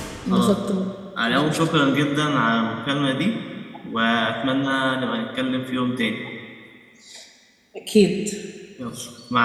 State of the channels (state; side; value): identical; both; correlation 1.00